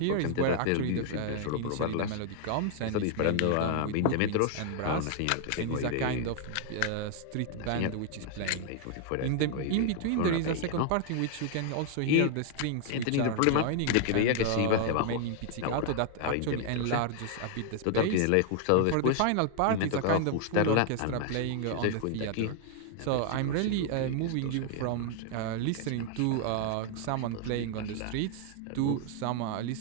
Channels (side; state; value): both; different; correlation 0.00